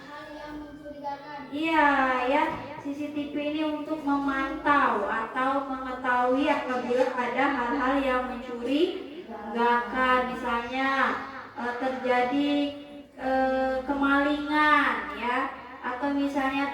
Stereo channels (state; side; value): identical; both; correlation 1.00